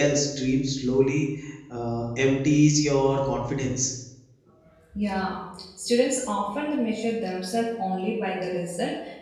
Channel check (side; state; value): both; identical; correlation 1.00